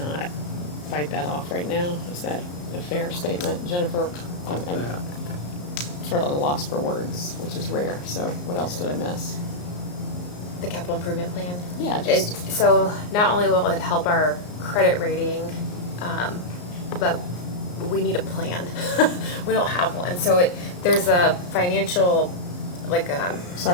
fight that off right now. Is that a fair statement? Jennifer, I'm sort of lost for words, which is rare, so what else did I miss? The capital improvement plan. Yeah, It, just, so not only will it help our credit rating, but we need a plan. We don't have one, so there's a financial, like,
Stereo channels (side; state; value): right; late; 34 ms